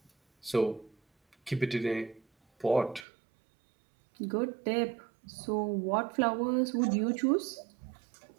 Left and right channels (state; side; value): drops out; left; at 3.1 s